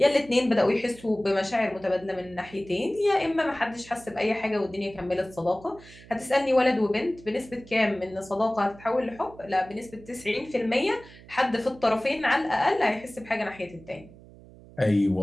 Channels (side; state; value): right; noise; hum, 21 dB below the sound